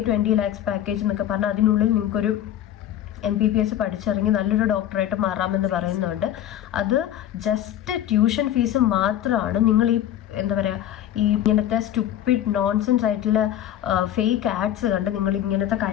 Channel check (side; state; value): right; quieter; 11.4 dB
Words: 20 lakhs പാക്കേജ് എന്നൊക്കെ പറഞ്ഞാൽ അതിനുള്ളിൽ നിങ്ങൾക്കൊരു MPBS പഠിച്ചിറങ്ങി നല്ലൊരു ഡോക്ടറായിട്ട് മാറാമെന്ന് പറയുന്നുണ്ട്. അത് ജസ്റ്റ് ട്യൂഷൻ ഫീസ് മാത്രമാണ്. നിങ്ങൾ ഈ എന്താ പറയുക, ഈ ഇങ്ങനത്തെ സ്റ്റുപ്പിഡ് നോൺസെൻസ് ആയിട്ടുള്ള ഫേക്ക് ആഡ്സ് കണ്ട് നിങ്ങൾ ഇങ്ങനത്തെ